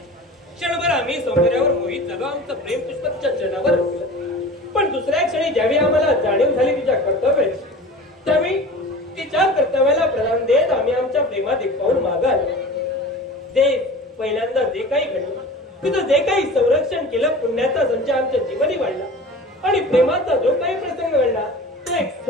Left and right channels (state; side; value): normal; both; correlation 0.38